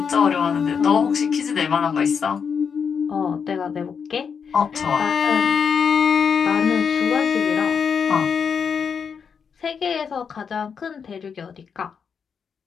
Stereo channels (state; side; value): quieter; right; 6.5 dB